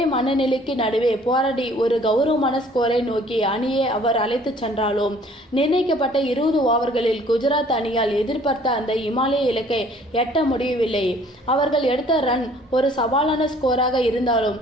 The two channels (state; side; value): normal; both; correlation 0.56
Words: மனநிலைக்கு நடுவே போராடி ஒரு கௌரவமான ஸ்கோரை நோக்கி அணியை அவர் அழைத்து சென்றாலும் நிர்ணயிக்கப்பட்ட 20 ஓவர்களில் குஜராத் அணியால் எதிர்பார்த்த அந்த இமாலய இலக்கை எட்ட முடியவில்லை. அவர்கள் எடுத்த ரன் ஒரு சவாலான ஸ்கோராக இருந்தாலும்